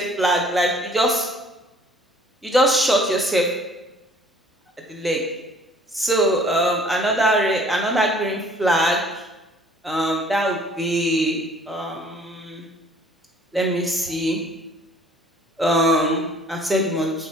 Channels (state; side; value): normal; both; correlation 0.54